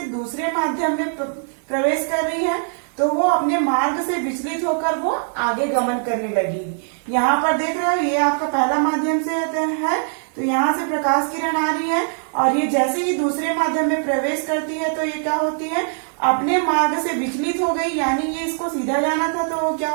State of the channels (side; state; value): left; silent; digital silence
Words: दूसरे माध्यम में प्रवेश कर रही है तो वो अपने मार्ग से विचलित होकर वो आगे गमन करने लगेगी। यहाँ पर देख रहे हो ये आपका पहला माध्यम से है, तो यहाँ से प्रकाश किरण आ रही है और ये जैसे ही दूसरे माध्यम में प्रवेश करती है तो ये क्या होती है, अपने मार्ग से विचलित हो गई, यानी ये इसको सीधा जाना था तो वो क्या